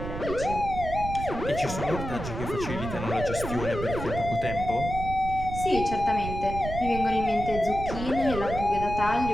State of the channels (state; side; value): noise; right; rumble, 7 dB below the sound